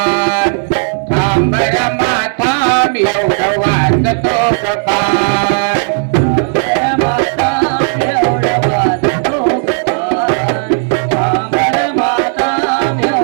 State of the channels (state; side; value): silent; left; 60 dB below the other